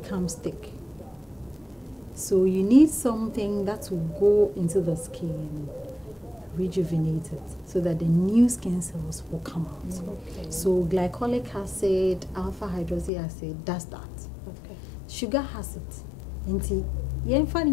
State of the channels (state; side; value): drops out; right; at 13.1 s